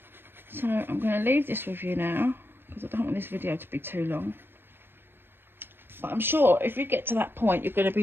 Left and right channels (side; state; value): left; late; 0.10 ms